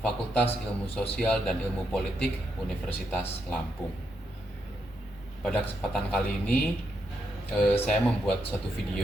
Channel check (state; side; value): normal; both; correlation 0.81